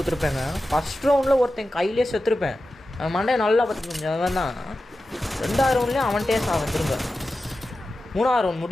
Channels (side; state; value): both; normal; correlation 0.93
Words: First ரவுண்டில் ஒருத்தன் கையிலே செத்துருப்பேன். அவன் மண்டையை நல்லா பார்த்துக்கணும். அவன் தான் 2வது ரவுண்ட்லேயும் அவன்கிட்டே சாவன். திரும்ப 3வது ரவுண்ட்